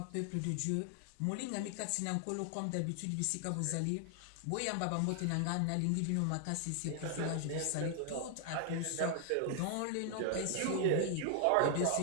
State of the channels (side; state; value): both; different; correlation 0.00